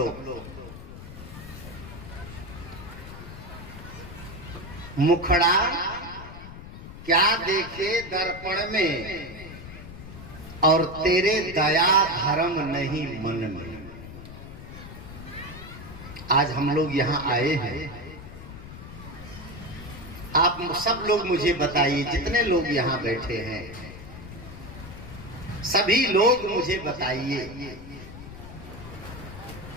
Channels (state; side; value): noise; left; rumble, 13 dB below the sound